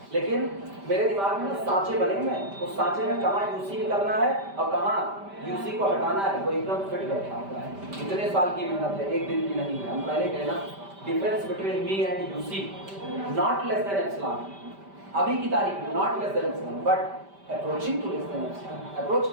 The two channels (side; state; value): left; late; 5.1 ms